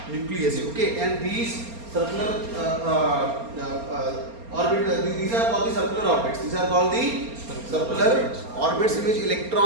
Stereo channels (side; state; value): left; late; 4.3 ms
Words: nucleus. Okay, and these circular orbit, these are called the circular orbits. These are called the circular orbits in which